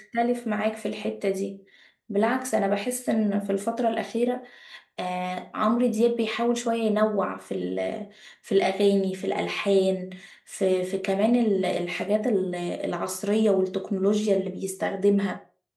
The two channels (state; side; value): identical; both; correlation 1.00